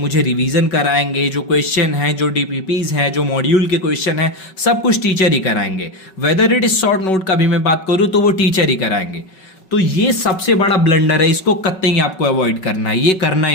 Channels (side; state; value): right; late; 5.3 ms